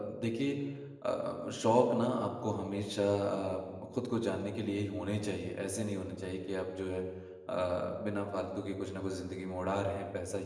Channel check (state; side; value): identical; both; correlation 1.00